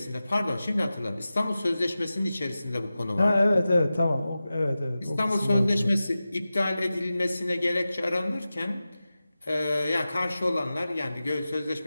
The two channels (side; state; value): both; inverted; correlation -0.95